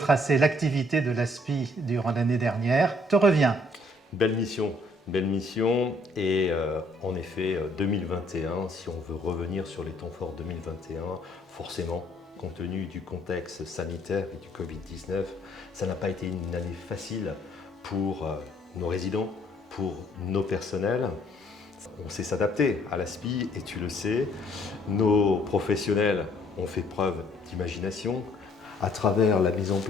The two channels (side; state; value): both; normal; correlation 0.63